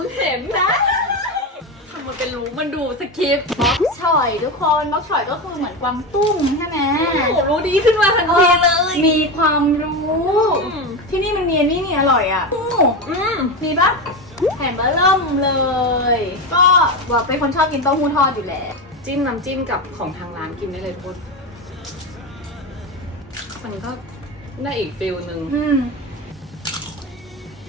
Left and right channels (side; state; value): both; normal; correlation 0.18